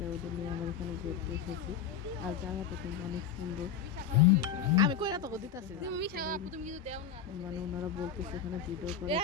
ওদের নিয়ে আমার এখানে যেতে এসেছি। আর জায়গাটা কিন্তু অনেক সুন্দর। আমি কইরা তো দিতাছি মানে ওনারা বলতেছে এখানে ভিডিও করা যাবে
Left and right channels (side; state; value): right; quieter; 8.2 dB